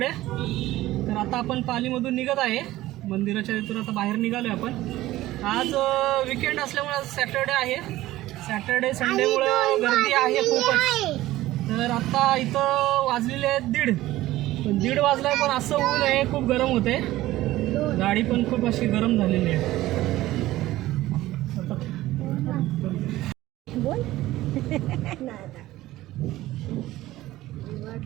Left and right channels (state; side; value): quieter; left; 16.2 dB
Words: तर आता आपण पालीमधून निघत आहे. मंदिराच्या इथून आता बाहेर निघालो आहे आपण. आज विकेंड असल्यामुळे सॅटर्डे आहे. सॅटर्डे संडेमुळं गर्दी आहे खूपच. तर आता इथं वाजलेले आहेत 1:30. पण 1:30 वाजलाय पण असं ऊन आहे. खूप गरम होते. गाडी पण खूप अशी गरम झालेली आहे.